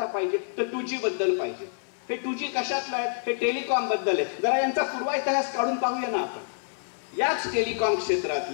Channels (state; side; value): silent; right; 55 dB below the other